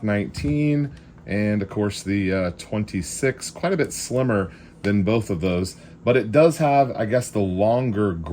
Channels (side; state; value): both; identical; correlation 1.00